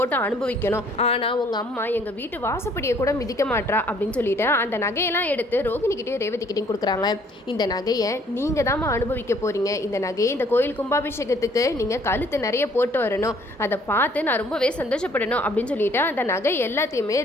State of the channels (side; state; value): both; normal; correlation 0.61